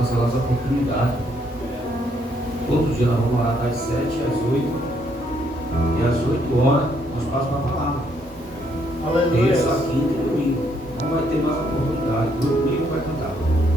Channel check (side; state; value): both; normal; correlation 0.71